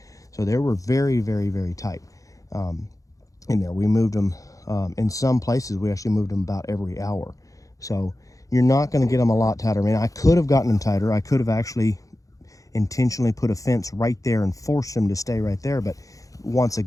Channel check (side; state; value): right; late; 0.16 ms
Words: So they were very, very, very tight in there. We moved them, in some places, we actually moved them about every hour. So you're not going to get them a lot tighter. I mean, I could have gotten them tighter. I could have actually intentionally put a fence right there and forced them to stay right there. But once